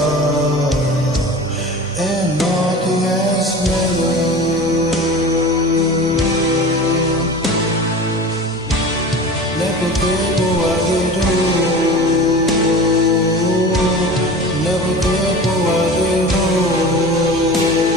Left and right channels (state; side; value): normal; both; correlation 0.35